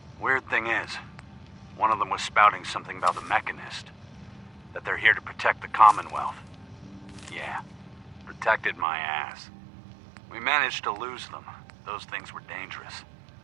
Weird thing is, one of them was spouting something about the Mechanist. That they're here to protect the Commonwealth. Yeah, protected my ass. We managed to lose them. Those things were dangerous.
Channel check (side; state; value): left; drops out; at 8.8 s